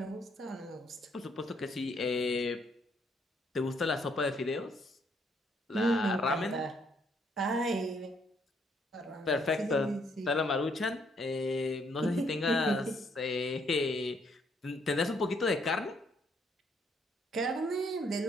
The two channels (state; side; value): normal; both; correlation 0.70